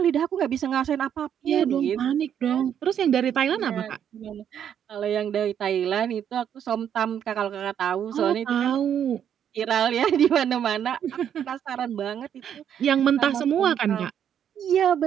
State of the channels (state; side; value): quieter; left; 9.1 dB